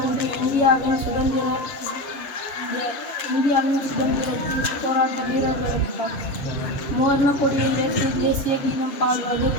இந்தியாவின் சுதந்திர போராட்ட வீரர்களுக்கு மோர்ன கொடியை ஏற்றி தேசிய கீதம் பாடுவது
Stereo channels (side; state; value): right; late; 7.2 ms